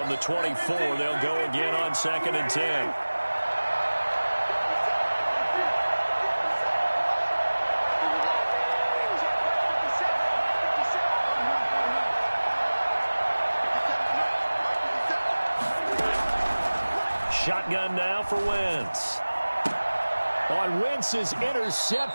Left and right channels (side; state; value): both; inverted; correlation -1.00